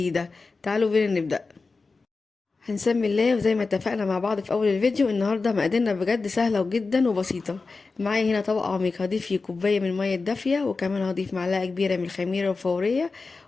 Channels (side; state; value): right; quieter; 4.1 dB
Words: تعالوا بينا نبدأ. هنسمي الله، وزي ما اتفقنا مع بعض في اول الفيديو النهارده مقاديرنا بجد سهله وجدا وبسيطه. معايا هنا طبق عميق هضيف فيه كوبايه من الميه الدافيه، وكمان هضيف معلقه كبيره من الخميره الفوريه،